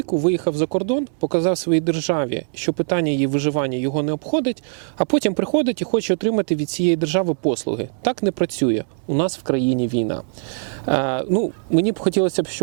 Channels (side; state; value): left; silent; digital silence